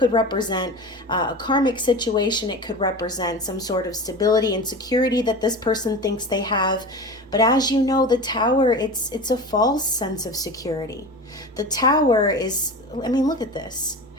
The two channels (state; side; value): normal; both; correlation 0.31